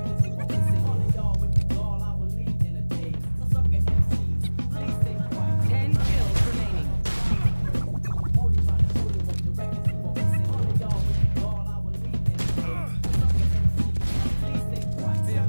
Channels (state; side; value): inverted; both; correlation -1.00